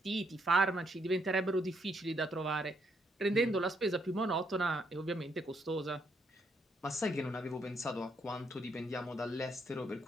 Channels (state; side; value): normal; both; correlation 0.74